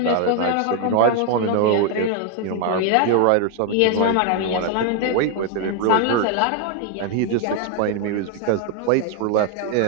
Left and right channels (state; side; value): different; both; correlation 0.01